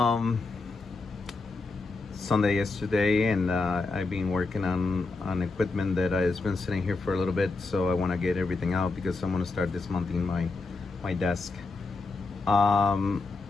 Sunday yesterday, and I've been working on equipment that has been sitting here for a little bit. So I want to get everything out because I'm going to start dismounting my desk. I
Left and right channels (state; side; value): quieter; right; 3.6 dB